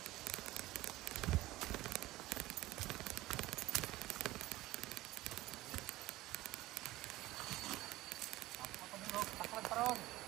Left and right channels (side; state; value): left; quieter; 17.5 dB